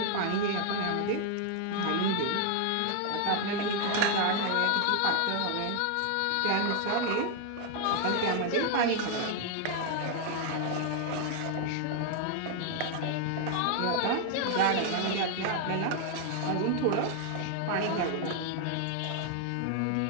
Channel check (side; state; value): both; different; correlation 0.00